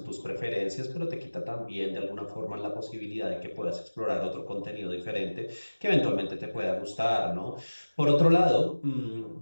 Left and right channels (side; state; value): both; inverted; correlation -1.00